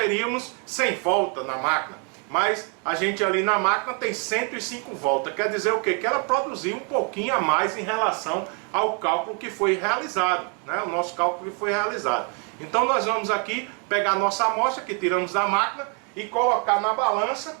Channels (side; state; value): left; quieter; 38.0 dB